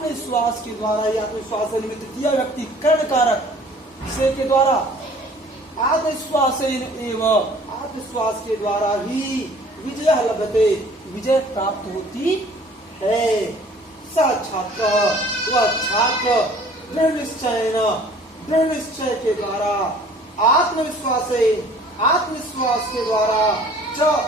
के द्वारा, आत्मविश्वास निमित्त तृतीय व्यक्ति कर्ण कारक से के द्वारा, आत्मविश्वास एवं, आत्मविश्वास के द्वारा ही विजय लभते, विजय प्राप्त होती है। स छात्र, वह छात्र, दृढ़ निश्चय, दृढ़ निश्चय के द्वारा, आत्मविश्वास, आत्मविश्वास के द्वारा, च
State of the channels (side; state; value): both; normal; correlation 0.52